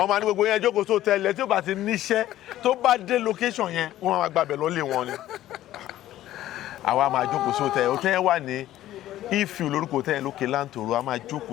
ní gbogbo yẹn jókòó tó tẹ́lẹ̀ tí ó bá ti níṣẹ́ tó bá dé location yẹn wọ́n máa gbàbẹ̀ lọ́lé wọn ni. àwa máa jókòó sí hòtẹ́ẹ̀ hòtẹ́ẹ̀ wà ní Ifẹ̀ lórúkọ hòtẹ́ẹ̀ lókè láǹtòrò a máa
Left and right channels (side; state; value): right; quieter; 13.8 dB